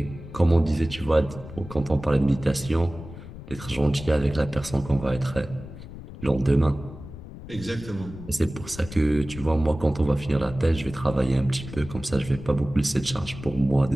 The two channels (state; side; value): noise; left; rumble, 14 dB below the sound